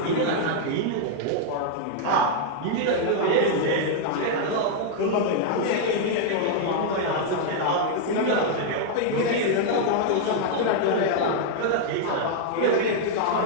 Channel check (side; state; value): both; different; correlation -0.01